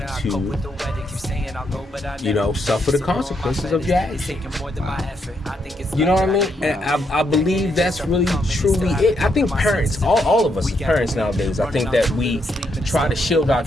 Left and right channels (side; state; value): both; normal; correlation 0.78